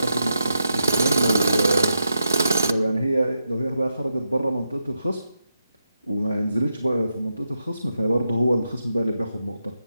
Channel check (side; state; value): both; inverted; correlation -0.85